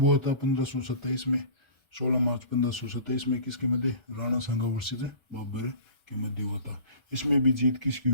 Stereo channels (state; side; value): late; left; 1.3 ms